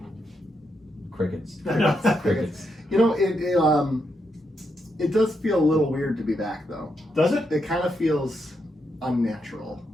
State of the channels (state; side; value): normal; both; correlation 0.81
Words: Crickets. No. Crickets. You know, it does feel a little weird to be back though. Does it? It kind of feels unnatural.